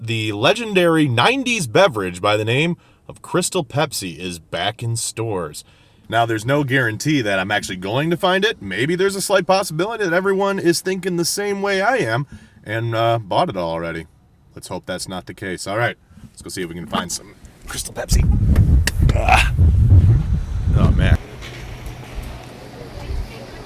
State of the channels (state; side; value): identical; both; correlation 1.00